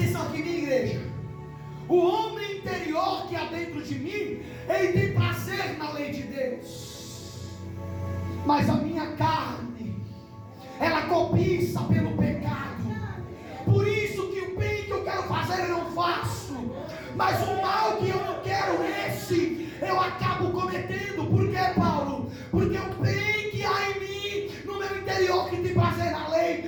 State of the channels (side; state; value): both; identical; correlation 1.00